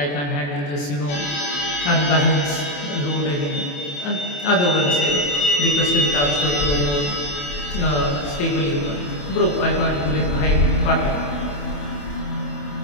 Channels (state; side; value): late; right; 28 ms